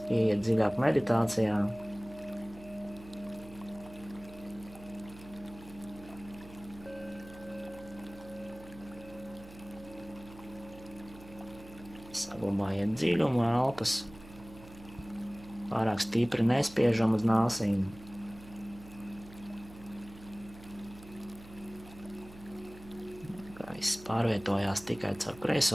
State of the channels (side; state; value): right; noise; hum, 18 dB below the sound